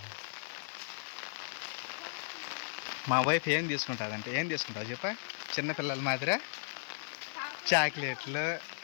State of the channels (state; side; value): silent; right; digital silence